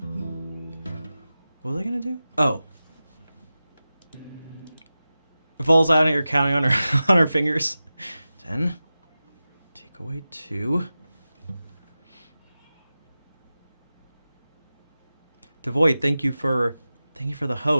What was I gonna do? Oh. Falls out and you're counting on her on her fingers. 10. Take away 2. Devoid, thank you for the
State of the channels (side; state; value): both; inverted; correlation -0.95